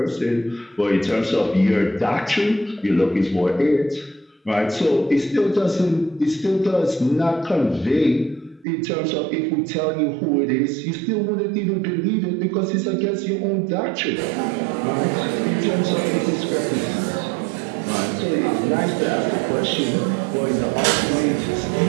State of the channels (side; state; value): left; drops out; at 8.7 s